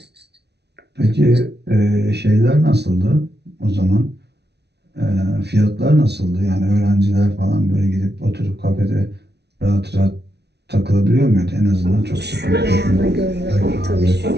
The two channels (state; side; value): late; left; 0.49 ms